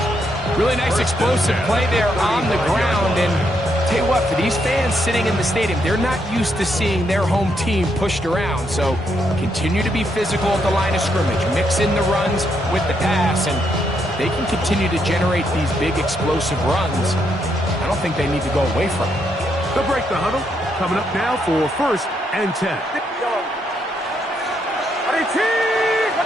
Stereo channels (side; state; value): both; normal; correlation 0.77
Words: Really nice explosive play there on the ground. And tell you what, for these fans sitting in the stadium, they're not used to seeing their home team pushed around. So continue to be physical at the line of scrimmage. Mix in the runs with the pass. And they can continue to generate these big explosive runs. I don't think they need to go away from it. They'll break the huddle. Coming up now for 1st and 10.